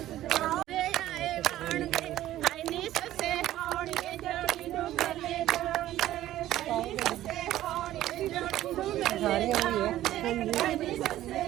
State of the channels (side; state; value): left; quieter; 13.9 dB